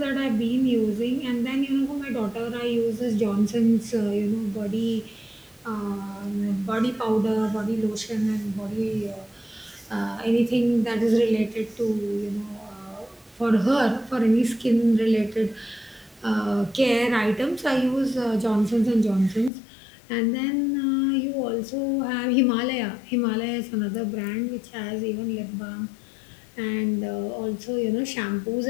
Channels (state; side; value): drops out; right; at 19.5 s